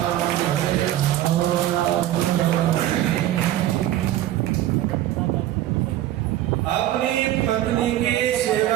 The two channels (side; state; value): left; quieter; 13.5 dB